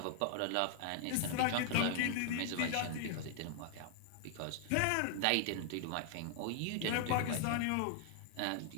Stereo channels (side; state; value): both; different; correlation 0.00